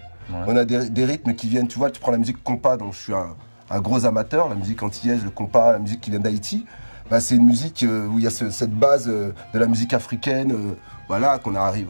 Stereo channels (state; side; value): inverted; both; correlation -1.00